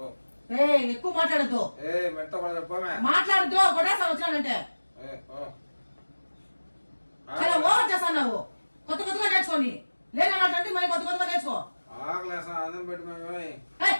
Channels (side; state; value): both; inverted; correlation -1.00